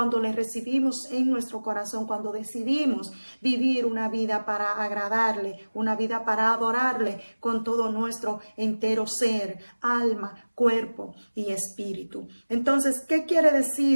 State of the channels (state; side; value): inverted; both; correlation -1.00